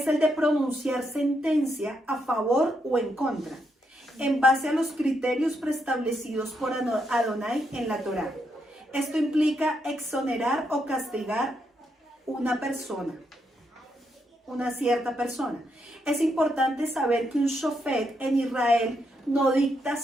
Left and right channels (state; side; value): normal; both; correlation 0.79